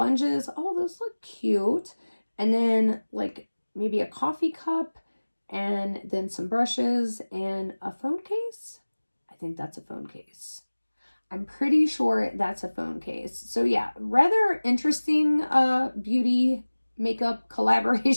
Oh, those look cute. And then like maybe a coffee cup and then some brushes and a phone case. I think that's a phone case. I'm pretty sure that's a phone case. So yeah, rather interesting beauty makeup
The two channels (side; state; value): both; inverted; correlation -1.00